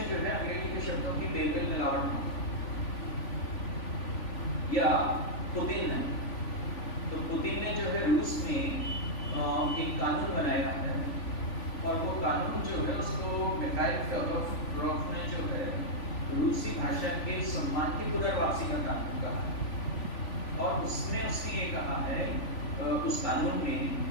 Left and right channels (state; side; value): late; right; 3.5 ms